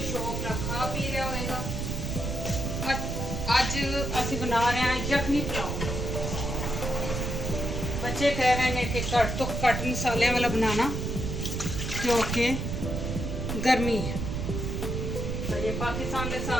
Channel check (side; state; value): right; noise; rumble, 3 dB below the sound